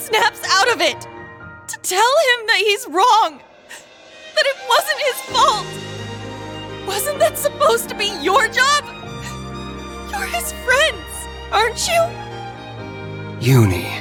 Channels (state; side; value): identical; both; correlation 1.00